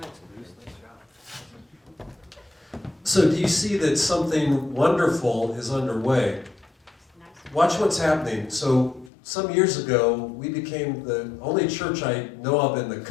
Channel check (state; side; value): drops out; right; at 9.1 s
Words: So do you see that something wonderful is underway? Watch what's happening. So some years ago, we became the only church I know of in the